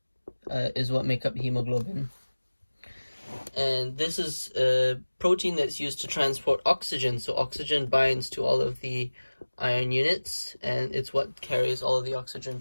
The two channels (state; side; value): inverted; both; correlation -1.00